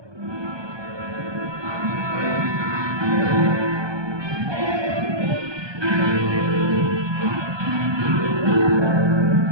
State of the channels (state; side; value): late; left; 1.2 ms